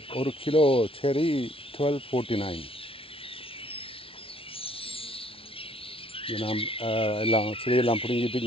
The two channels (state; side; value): late; right; 0.26 ms